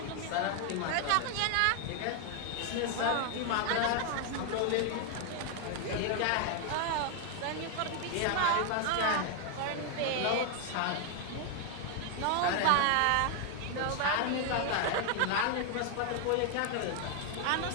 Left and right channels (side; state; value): both; different; correlation 0.00